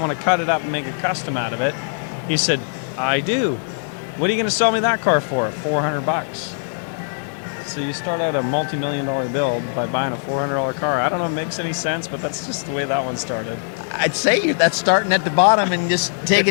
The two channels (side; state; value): right; silent; digital silence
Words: to cut it up and make a custom out of it. He said, I do. What are you going to sell me that car for? $400. So you start out a multi-million-dollar build by buying a $400 car. I don't know if it makes any sense, but that's just the way that one started. I'd say that's starting at the bottom and just